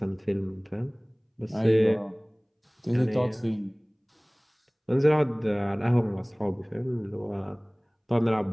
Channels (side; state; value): both; identical; correlation 1.00